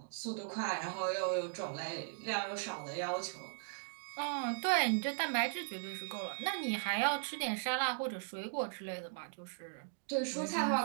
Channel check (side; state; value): left; silent; digital silence